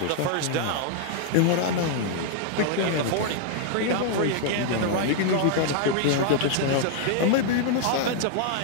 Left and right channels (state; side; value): different; both; correlation -0.01